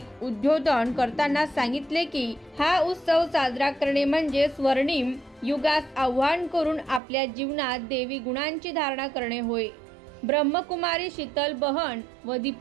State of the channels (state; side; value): drops out; left; at 7.0 s